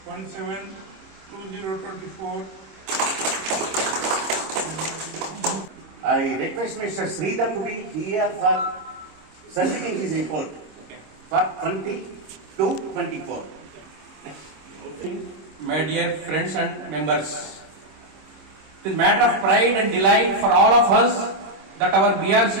1/7/2024. I request Mr. Sridhar to be here for submitting his report for 2022-24. My dear friends and members, it is a matter of pride and delight for all of us that our BRC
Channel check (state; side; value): late; left; 26 ms